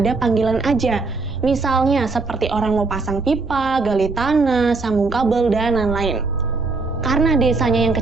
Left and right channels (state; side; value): quieter; left; 3.9 dB